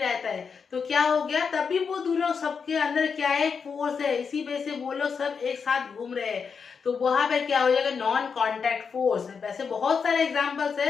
है। तो क्या हो गया, तभी वो दोनों सबके अंदर क्या है, फोर्स है। इसी वजह से वो लोग सब एक साथ घूम रहे हैं। तो वहां पर क्या हो जाएगा, नॉन कांटेक्ट फोर्स। वैसे बहुत सारे एग्जांपल्स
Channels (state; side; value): quieter; right; 5.9 dB